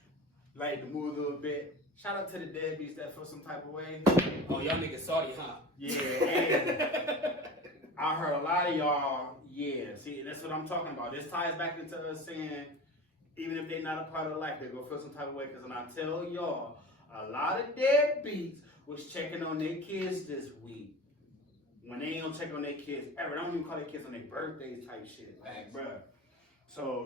like to move a little bit. Shout out to the deadbeats that feel some type of way. Oh, y'all niggas salty, huh? Yeah, and I heard a lot of y'all, yeah. See, that's what I'm talking about. This ties back into us saying, even if they're not a part of life, they're gonna feel some type of way. Because when I tell y'all, a lot of deadbeats was checking on their kids this week. When they ain't gonna check on their kids ever. They don't even call their kids on their birthdays type shit. Like, bruh.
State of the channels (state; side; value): normal; both; correlation 0.34